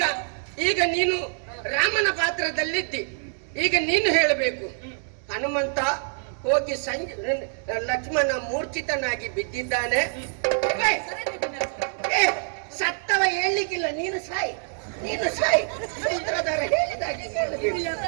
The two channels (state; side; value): silent; left; 59 dB below the other